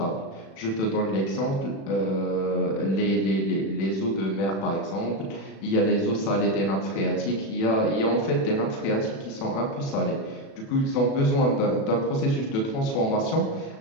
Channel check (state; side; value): late; right; 36 ms